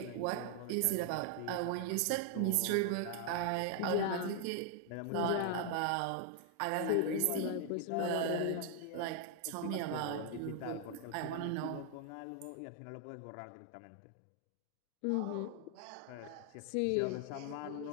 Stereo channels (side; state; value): both; different; correlation 0.00